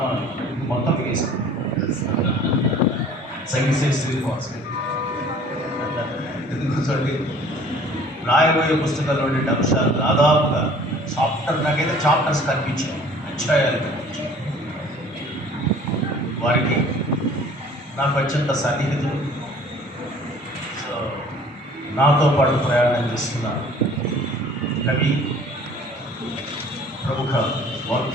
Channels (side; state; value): both; normal; correlation 0.51